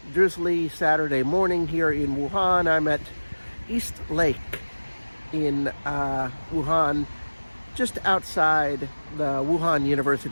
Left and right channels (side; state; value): both; inverted; correlation -1.00